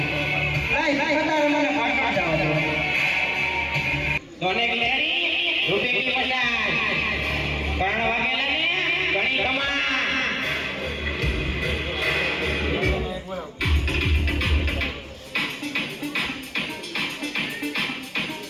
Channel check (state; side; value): identical; both; correlation 1.00